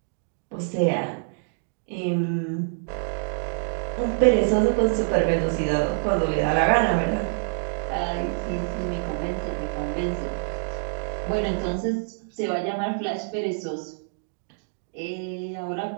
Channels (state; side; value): silent; left; digital silence